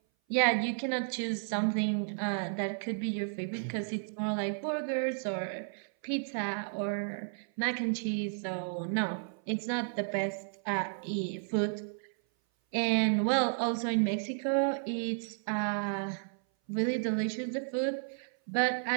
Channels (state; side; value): silent; left; 56 dB below the other